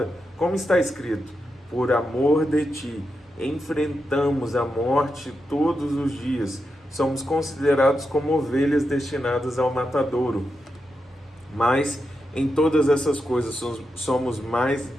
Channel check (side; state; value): both; normal; correlation 0.87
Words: Como está escrito: por amor de ti, enfrentamos a morte todos os dias. Somos considerados como ovelhas destinadas ao matadouro. Mas em todas essas coisas somos mais